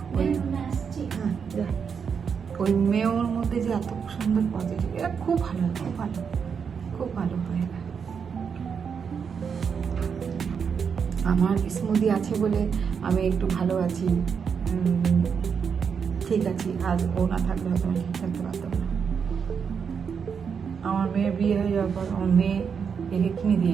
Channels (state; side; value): quieter; left; 6.5 dB